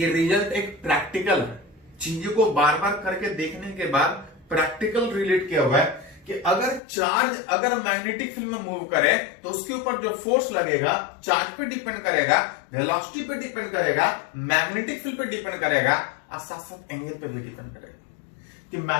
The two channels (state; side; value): drops out; right; at 6.8 s